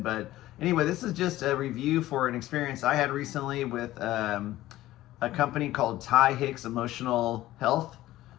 But anyway, this is just a review for an experience I had recently with a company called Hicks Emotional Health.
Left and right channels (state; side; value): quieter; right; 15.6 dB